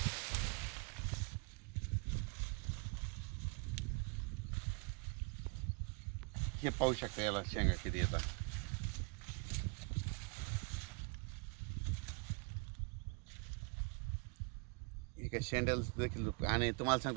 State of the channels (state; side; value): quieter; left; 32.7 dB